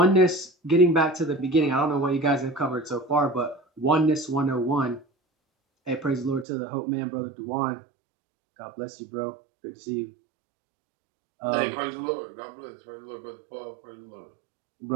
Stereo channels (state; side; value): drops out; left; at 6.5 s